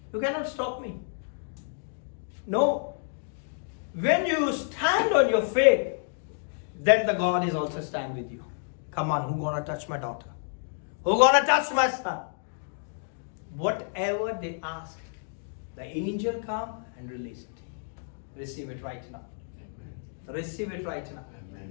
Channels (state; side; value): silent; right; digital silence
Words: You cannot stop me. No. When you stand on your faith, then the God is also stand with you. Come on, who gonna touch my daughter? Who gonna touch my son? whatever they ask, the angel come and release it. Receive it right now. Receive it right now.